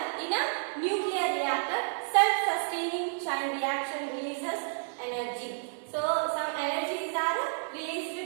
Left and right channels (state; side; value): silent; left; digital silence